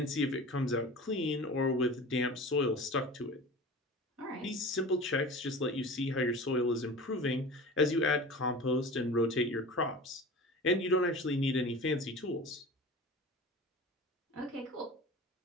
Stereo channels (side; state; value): both; normal; correlation 0.35